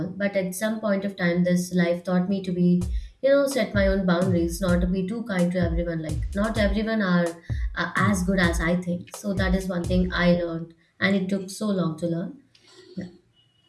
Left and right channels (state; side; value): identical; both; correlation 1.00